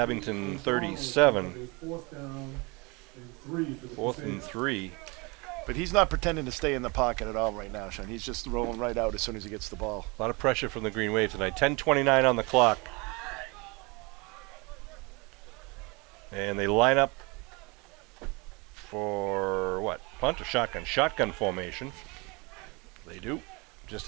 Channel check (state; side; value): quieter; left; 27.7 dB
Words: 37. 4th and 3. But he's not pretending to stay in the pocket at all right now, Sean. He's just rolling right out as soon as he gets the ball. A lot of pressure from the Green Wave tonight. 10:29 on the clock. And they line up for what? Punt or shotgun? Shotgun formation. They do,